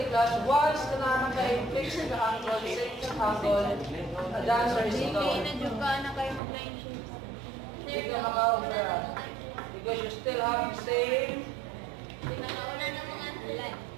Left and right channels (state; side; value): drops out; left; at 6.4 s